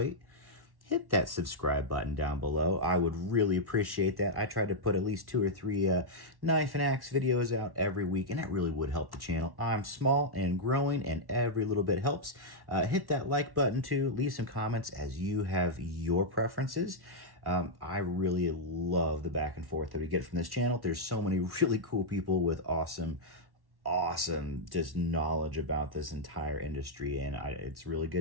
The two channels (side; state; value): left; late; 1.1 ms